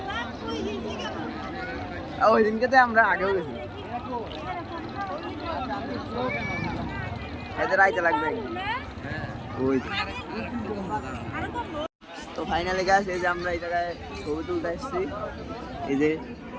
ওই দিনকে তো আমরা আগেও গেছি। এদের আইতে লাগবে ওই তো। ফাইনালি গাছ এই যে আমরা এই জায়গায় ছবি তুলতে আসছি। এই যে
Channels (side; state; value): both; identical; correlation 1.00